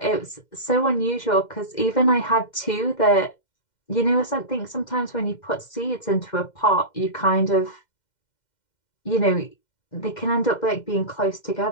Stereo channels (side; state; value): right; late; 2.1 ms